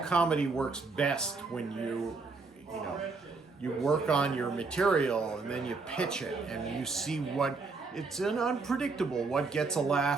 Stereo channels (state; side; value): quieter; left; 4.1 dB